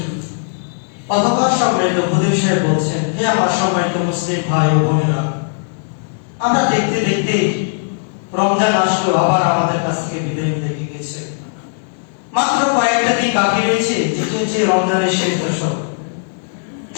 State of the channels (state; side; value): silent; right; 65 dB below the other